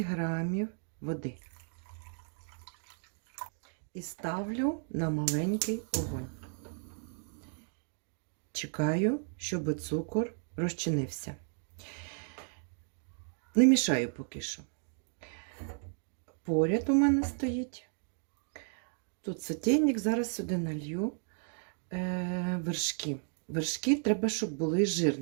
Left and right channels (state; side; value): silent; left; 55 dB below the other